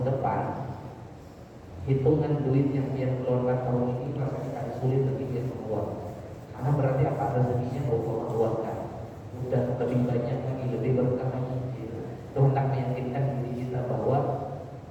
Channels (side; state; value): both; identical; correlation 1.00